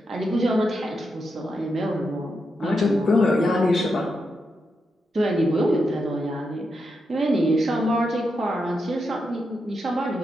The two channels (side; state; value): both; normal; correlation 0.85